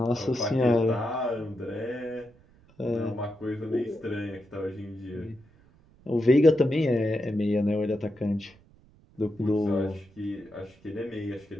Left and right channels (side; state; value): right; noise; rumble, 28 dB below the sound